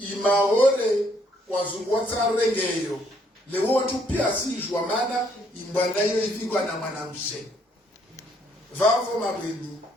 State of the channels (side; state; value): both; normal; correlation 0.68